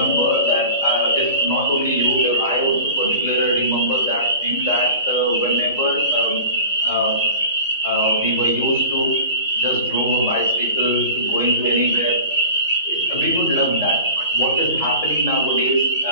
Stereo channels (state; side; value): inverted; both; correlation -0.39